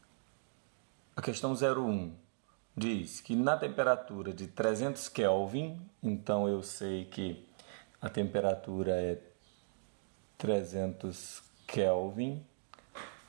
A questão 01 diz que na temperatura de 300 Kelvin, então eu sei que a temperatura é 300 Kelvin,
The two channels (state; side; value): silent; left; digital silence